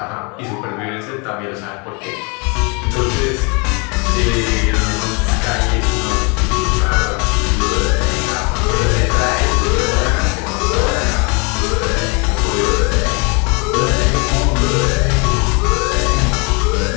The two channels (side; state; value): right; quieter; 31.8 dB